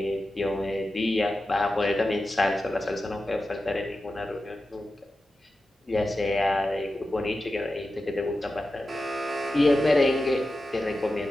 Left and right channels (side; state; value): both; normal; correlation 0.92